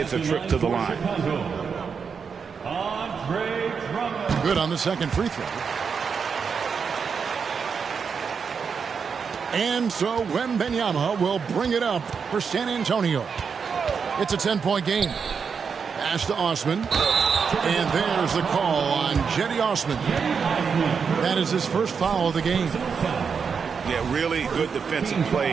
a trip to the line. Good on the second free throw. And so Wembanyama will bring it up for San Antonio. It's a 10-point game. Pass to Osman. And there's the call on Jetty Osman. That is his first foul of the game. Yeah, really good defensive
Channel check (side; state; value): left; quieter; 6.0 dB